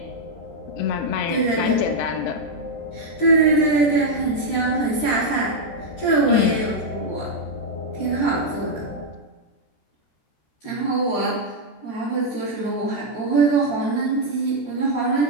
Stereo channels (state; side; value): late; right; 13 ms